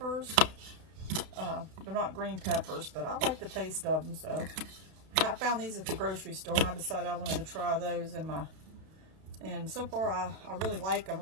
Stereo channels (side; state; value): left; late; 32 ms